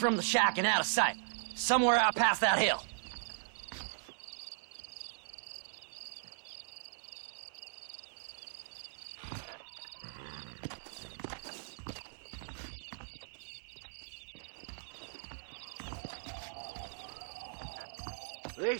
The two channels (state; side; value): silent; left; 52 dB below the other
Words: the shack and out of sight. Somewhere out past that hill.